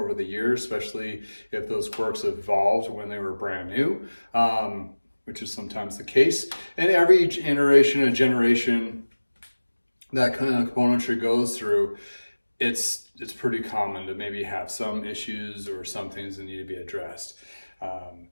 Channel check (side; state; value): both; inverted; correlation -1.00